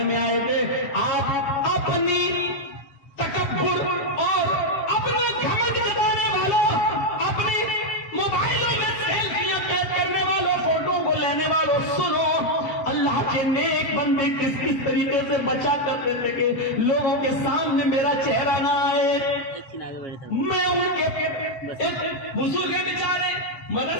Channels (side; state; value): right; late; 7.3 ms